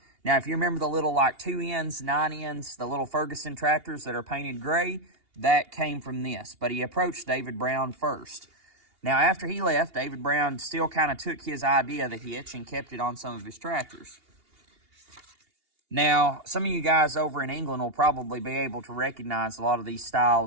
Now, if you remember the little like 2 ends, 9 ends, the little Ferguson tractors that are painted gray, that came from this. But he approached David Brown first. Now, after he left, David Brown still kind of took his idea of the hitch and kept it on some of his tractors. Now, some of you guys over in England will probably be able to recognize a lot of these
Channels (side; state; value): left; late; 2.8 ms